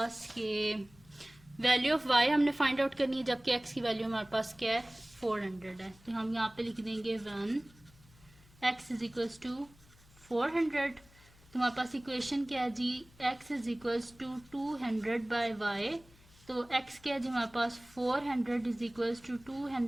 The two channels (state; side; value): noise; left; hum, 26 dB below the sound